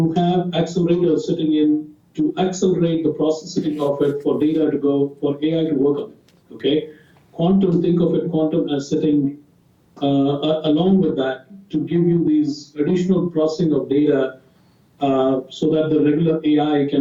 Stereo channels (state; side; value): identical; both; correlation 1.00